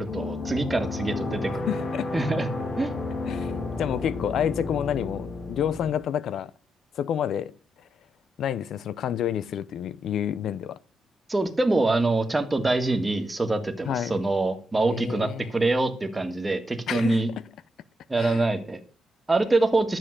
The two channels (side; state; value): both; normal; correlation 0.82